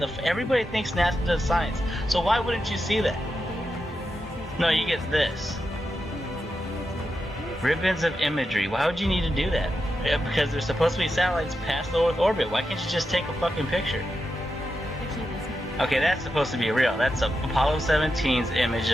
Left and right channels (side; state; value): both; normal; correlation 0.88